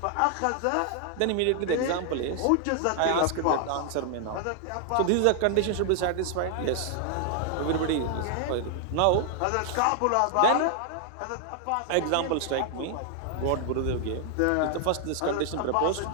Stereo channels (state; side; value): different; both; correlation 0.00